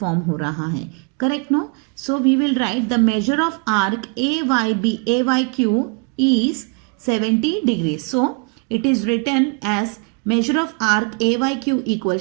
हो रहा है. Correct no? So we will write the measure of arc AYQ is 70 degrees. So it is written as measure of arc AYQ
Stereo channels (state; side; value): quieter; left; 35.4 dB